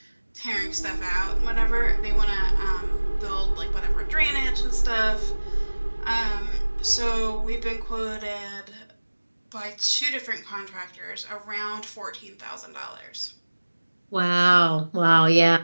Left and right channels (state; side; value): inverted; both; correlation -1.00